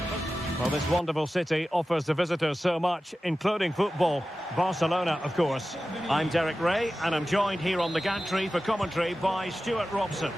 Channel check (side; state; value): both; normal; correlation 0.94